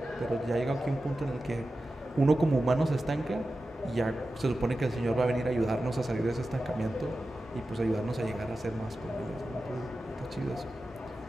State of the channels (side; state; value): both; normal; correlation 0.93